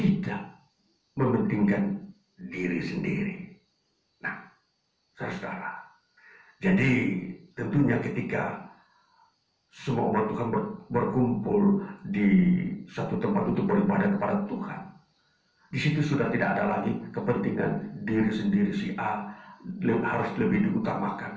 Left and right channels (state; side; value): identical; both; correlation 1.00